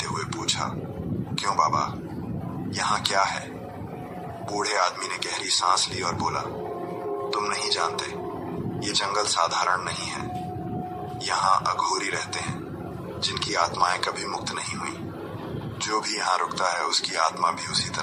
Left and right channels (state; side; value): identical; both; correlation 1.00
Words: हुए पूछा, क्यों बाबा, यहाँ क्या है? बूढ़े आदमी ने गहरी सांस ली और बोला, तुम नहीं जानते, ये जंगल साधारण नहीं है। यहाँ अघोरी रहते हैं जिनकी आत्माएं कभी मुक्त नहीं हुई। जो भी यहाँ रुकता है उसकी आत्मा भी उसी